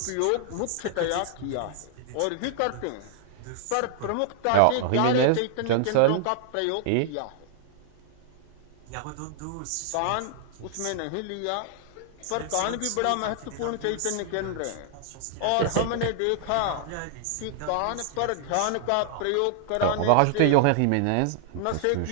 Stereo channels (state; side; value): different; both; correlation -0.01